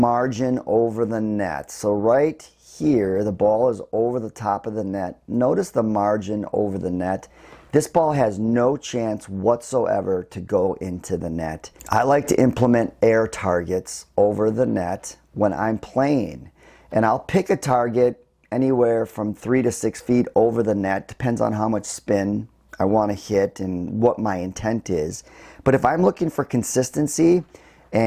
over the net. So right here, the ball is over the top of the net. Notice the margin over the net. This ball has no chance whatsoever to go into the net. I like to implement air targets over the net when I'm playing. And I'll pick a target anywhere from 3 to 6 feet over the net. Depends on how much spin I want to hit and what my intent is. But if I'm looking for consistency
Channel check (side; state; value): both; identical; correlation 1.00